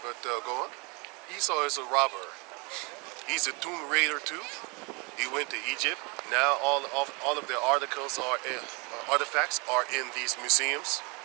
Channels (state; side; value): quieter; left; 30.3 dB